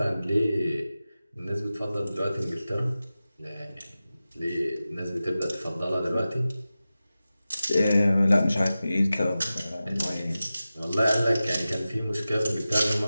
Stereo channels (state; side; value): inverted; both; correlation -0.95